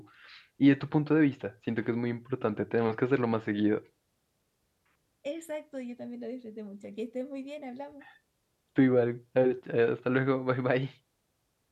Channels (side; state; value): both; identical; correlation 1.00